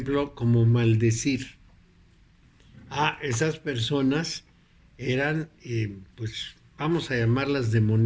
como maldecir. Esas personas eran, pues, vamos a llamarlas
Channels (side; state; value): both; identical; correlation 1.00